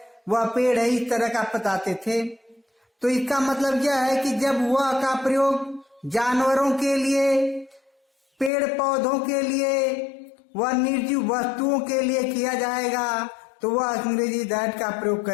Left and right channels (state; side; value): drops out; right; at 8.5 s